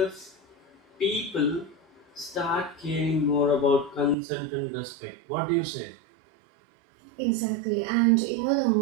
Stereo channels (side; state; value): left; drops out; at 4.2 s